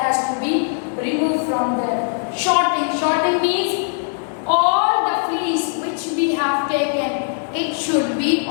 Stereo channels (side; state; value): right; silent; digital silence